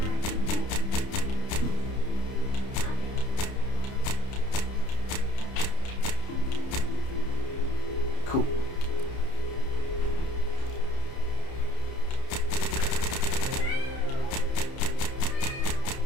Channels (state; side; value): late; right; 30 ms